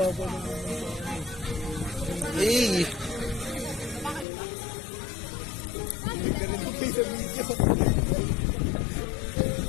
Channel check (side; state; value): right; drops out; at 4.2 s